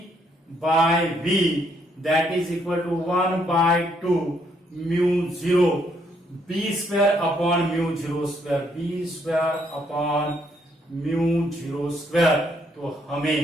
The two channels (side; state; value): both; normal; correlation 0.71